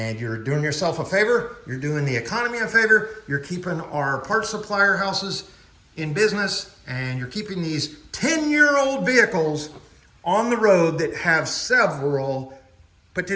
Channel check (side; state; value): both; identical; correlation 1.00